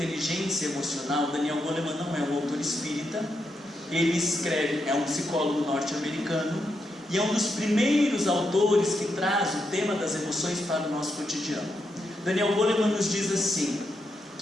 Emocional, Daniel Goleman não é um autor espírita, ele escreve, é um psicólogo norte-americano, e é um dos primeiros autores que traz o tema das emoções para o nosso cotidiano. Daniel Goleman nos diz assim,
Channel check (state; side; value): normal; both; correlation 0.83